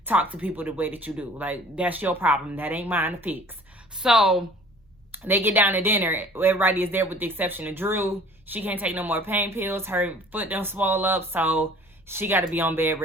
talk to people the way that you do. Like, that's your problem. That ain't mine to fix. So they get down to dinner. Everybody is there with the exception of Drew. She can't take no more pain pills. Her foot done swole up, so she got to be on bed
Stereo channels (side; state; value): both; normal; correlation 0.49